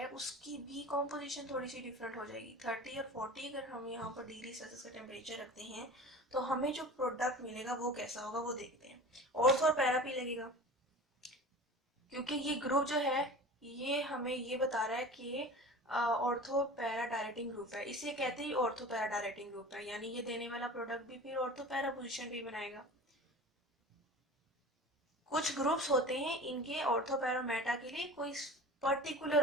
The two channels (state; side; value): normal; both; correlation 0.37